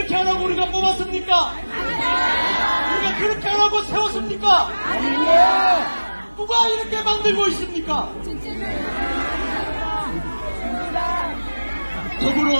하라고 우리가 뽑았습니까? 우리가 그렇게 하라고 세웠습니까? 누가 이렇게 만들고 있습니까?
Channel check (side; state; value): both; inverted; correlation -1.00